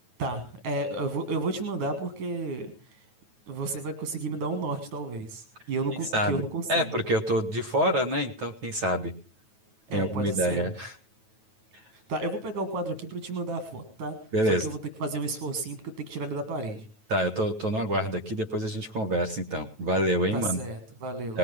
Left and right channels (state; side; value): late; left; 9.2 ms